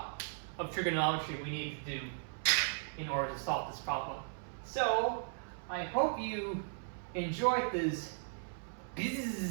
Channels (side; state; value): left; silent; 53 dB below the other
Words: of trigonometry we need to do in order to solve this problem. So I hope you enjoyed this